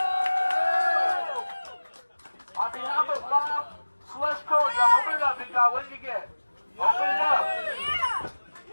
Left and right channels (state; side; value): inverted; both; correlation -1.00